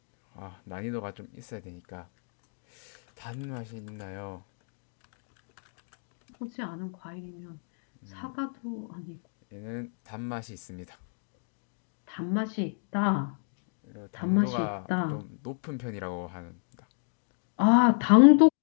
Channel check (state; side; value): silent; right; digital silence